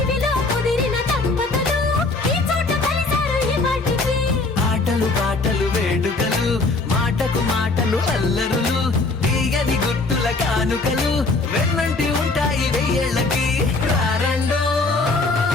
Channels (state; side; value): quieter; right; 3.5 dB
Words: ఇవిలో కుదిరిన దంపతులు ఈ చోట కలిసారు ఈ వాటికి ఆటలు పాటలు వేడుకలు మాటకు మాటలు అల్లరులు తీయని గుర్తుల కానుకలు వెన్నంటి ఉంటాయి వెయ్యేళ్ళకి రారండో